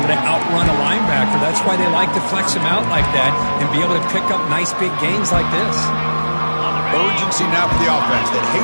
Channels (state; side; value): inverted; both; correlation -1.00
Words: to outrun a linebacker. That's why they like to flex him out like that and be able to pick up nice big gains like this. Urgency now for the offense that